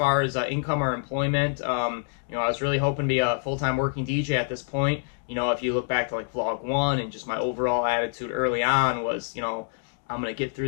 as income or employment. I was really hoping to be a full-time working DJ at this point. If you look back to like vlog 1 and just my overall attitude early on was, I'm going to get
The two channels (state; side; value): silent; right; 61 dB below the other